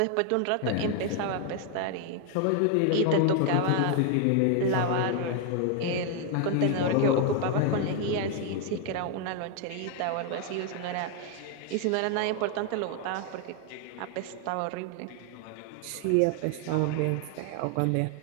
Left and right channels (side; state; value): both; different; correlation 0.00